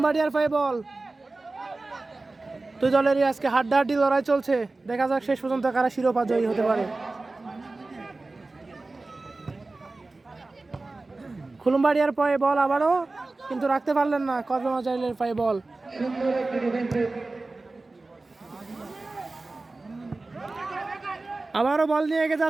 পায়ে বল। দুই দলেরই আজকে হাড্ডাহাড্ডি লড়াই চলছে, দেখা যাক শেষ পর্যন্ত কারা শিরোপা জয়ী হতে পারে। খুলুমবাড়িয়ার পায়ে বল আবারও, কিন্তু রাখতে পারলেন না, কসবা মোজাইলের পায়ে বল। আবারও বল নিয়ে এগিয়ে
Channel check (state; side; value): quieter; left; 3.3 dB